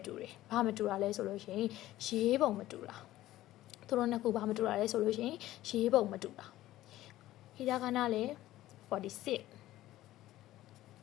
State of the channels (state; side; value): quieter; right; 15.1 dB